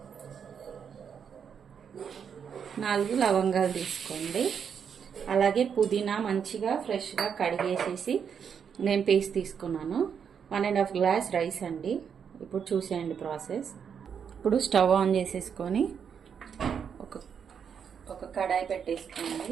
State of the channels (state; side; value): quieter; left; 7.3 dB